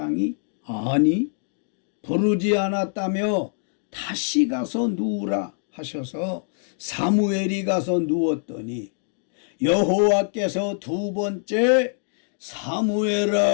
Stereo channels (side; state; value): right; silent; digital silence